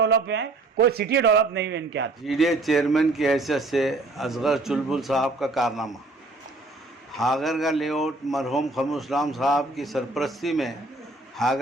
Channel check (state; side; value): quieter; left; 3.1 dB